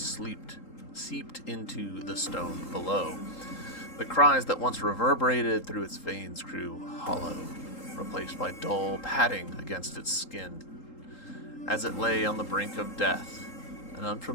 into the stone below. The cries that once reverberated through its veins grew hollow, replaced by dull padding against its skin. As it lay on the brink of death, an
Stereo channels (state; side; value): late; right; 3.8 ms